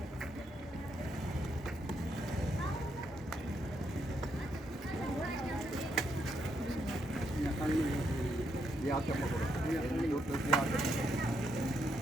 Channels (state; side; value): normal; both; correlation 0.78